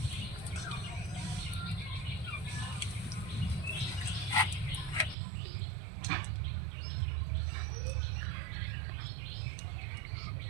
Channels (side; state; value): left; drops out; at 5.2 s